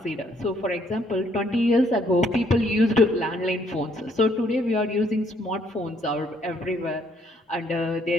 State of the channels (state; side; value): normal; both; correlation 0.68